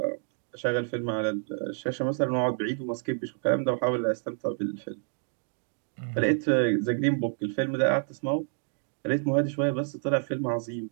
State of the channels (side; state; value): left; silent; 59 dB below the other